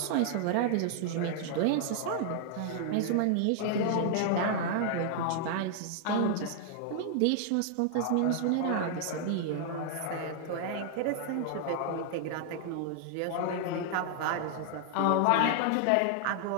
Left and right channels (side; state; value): both; different; correlation 0.00